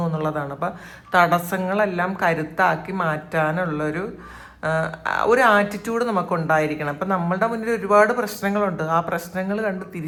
എന്നുള്ളതാണ്. അപ്പം തടസ്സങ്ങളെല്ലാം കരുത്താക്കി മാറ്റാനുള്ളൊരു ആറ്റിറ്റ്യൂഡ് നമുക്കുണ്ടായിരിക്കണം. അപ്പം നമ്മളുടെ മുന്നിൽ ഒരുപാട് പ്രശ്നങ്ങളുണ്ട്. ആ പ്രശ്നങ്ങൾ കണ്ട്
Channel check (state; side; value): identical; both; correlation 1.00